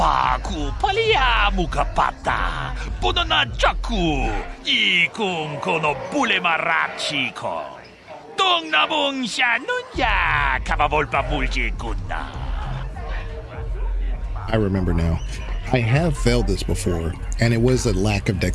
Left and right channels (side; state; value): both; identical; correlation 1.00